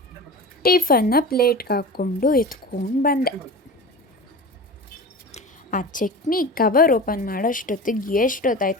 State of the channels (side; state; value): both; normal; correlation 0.32